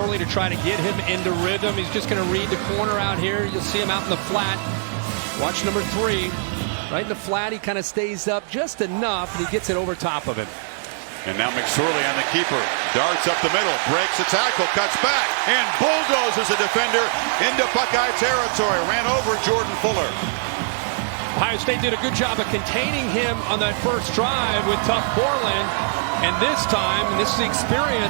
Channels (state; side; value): silent; left; 62 dB below the other